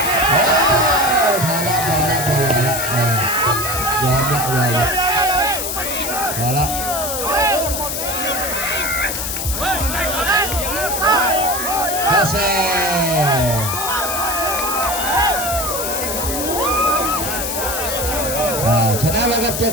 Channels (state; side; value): noise; left; hiss, 3 dB below the sound